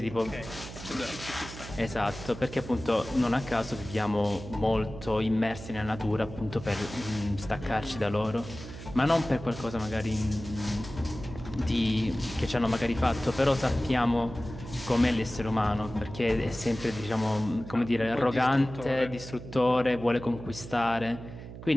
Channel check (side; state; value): right; noise; hum, 12 dB below the sound